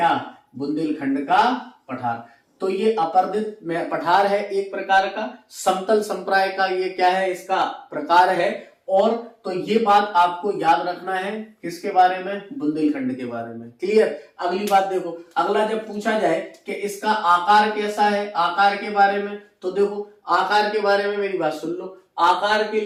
बुंदेलखंड का पठार। तो ये अपर्दित पठार है एक प्रकार का, समतल संप्राय का ये क्या है, इसका प्रकार है। और तो ये बात आपको याद रखना है किसके बारे में, बुंदेलखंड के बारे में। क्लियर। अगली बात देखो, अगला जब पूछा जाए कि इसका आकार कैसा है, आकार के बारे में, तो देखो आकार के बारे में मेरी बात सुन लो। आकार के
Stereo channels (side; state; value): both; identical; correlation 1.00